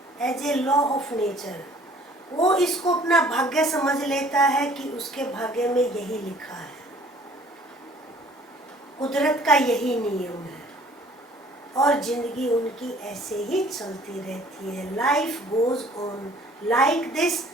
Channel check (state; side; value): normal; both; correlation 0.54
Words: as a law of nature. वो इसको अपना भाग्य समझ लेता है कि उसके भाग्य में यही लिखा है, कुदरत का यही नियम है, और जिंदगी उनकी ऐसे ही चलती रहती है. Life goes on like this